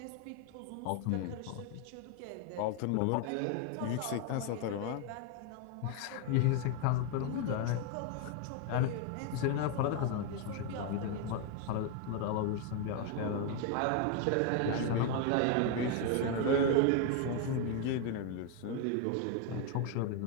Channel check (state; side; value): different; both; correlation 0.01